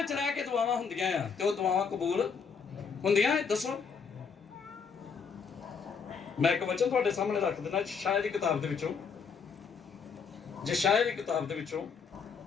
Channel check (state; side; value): quieter; right; 5.8 dB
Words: ਰਹਿ ਕੇ ਦੁਆਵਾਂ ਹੁੰਦੀਆਂ ਆ ਤੇ ਉਹ ਦੁਆਵਾਂ ਕਬੂਲ ਹੁੰਦੀਆਂ? ਦੱਸੋ। ਮੈਂ ਇੱਕ ਵਚਨ ਤੁਹਾਡੇ ਸਾਹਮਣੇ ਰੱਖ ਦਿੰਦਾ, ਯਸ਼ਾਇਆ ਦੀ ਕਿਤਾਬ ਦੇ ਵਿੱਚੋਂ, ਯਸ਼ਾਇਆ